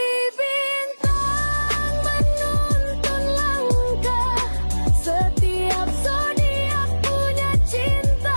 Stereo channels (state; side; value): inverted; both; correlation -1.00